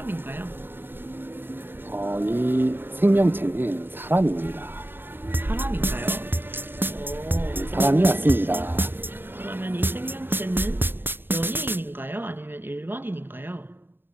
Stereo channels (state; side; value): late; left; 0.098 ms